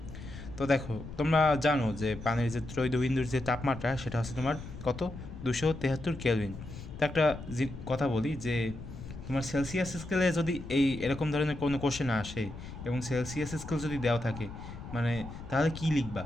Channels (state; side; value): noise; left; rumble, 12 dB below the sound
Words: তো দেখো, তোমরা জানো যে পানির যে ত্রৈধবিন্দুর যে তাপমাত্রা সেটা হচ্ছে তোমার কত, 273 কেলভিন। তো একটা কথা বলি যে তোমার সেলসিয়াস স্কেলে যদি এরকম ধরনের কোনো কোশ্চেন আসে এবং সেলসিয়াস স্কেল যদি দেওয়া থাকে, মানে তাহলে কী লিখবা?